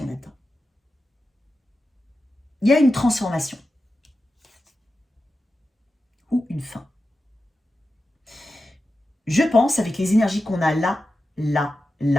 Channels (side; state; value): both; normal; correlation 0.91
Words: là-dedans. Il y a une transformation. Ou une fin. Je pense, avec les énergies qu'on a là,